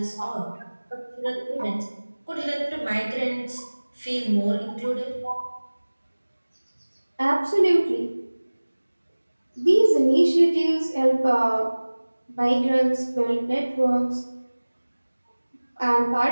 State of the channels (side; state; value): both; inverted; correlation -1.00